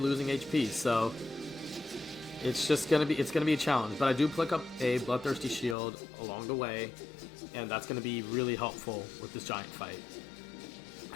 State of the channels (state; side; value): drops out; right; at 5.8 s